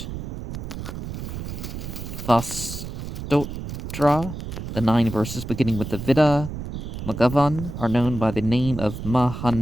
Vastotra, the 9 verses beginning with the Vida Magavan are known by the name of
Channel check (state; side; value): noise; right; rumble, 7 dB below the sound